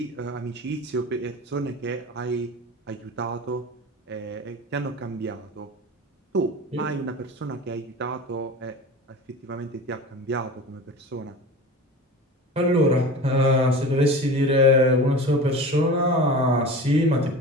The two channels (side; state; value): both; normal; correlation 0.34